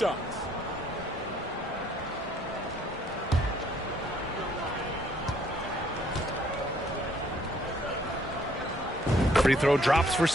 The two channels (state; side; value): normal; both; correlation 0.64